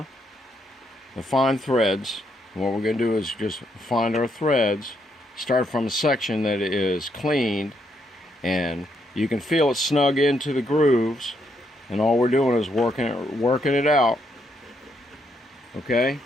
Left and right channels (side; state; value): both; normal; correlation 0.76